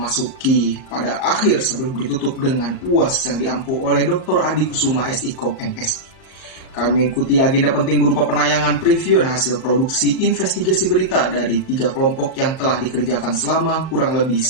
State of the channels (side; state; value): right; late; 38 ms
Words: pada akhir sebelum ditutup dengan UAS yang diampu oleh Dr. Adi Kusuma SIKOM MSI. Kami mengikuti agenda penting berupa penayangan preview dan hasil produksi investigasi berita dari 3 kelompok yang telah dikerjakan selama kurang lebih